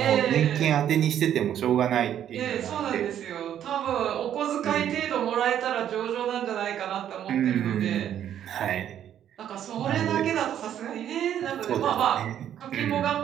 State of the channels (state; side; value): quieter; left; 10.3 dB